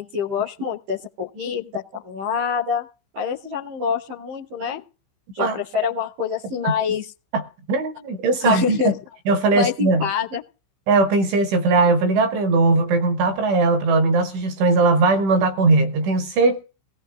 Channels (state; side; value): late; left; 15 ms